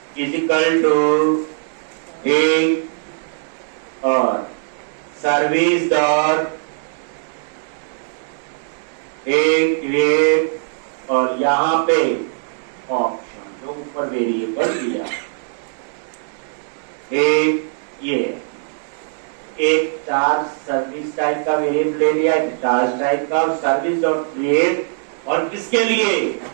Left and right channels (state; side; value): silent; left; digital silence